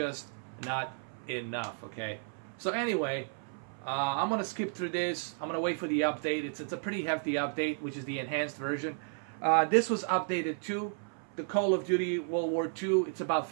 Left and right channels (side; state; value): left; silent; 56 dB below the other